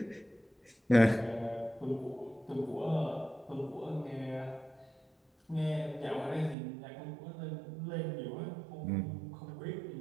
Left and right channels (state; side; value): drops out; left; at 6.6 s